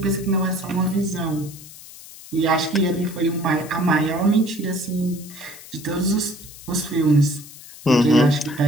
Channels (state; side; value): noise; left; hiss, 17 dB below the sound